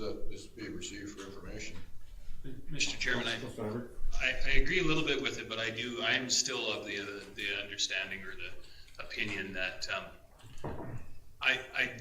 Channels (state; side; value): identical; both; correlation 1.00